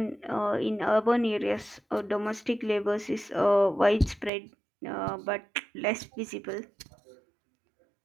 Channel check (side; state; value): left; drops out; at 4.3 s